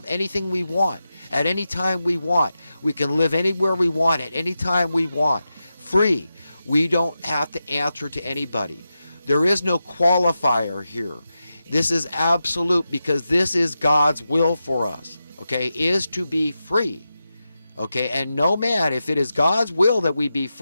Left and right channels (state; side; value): inverted; both; correlation -0.91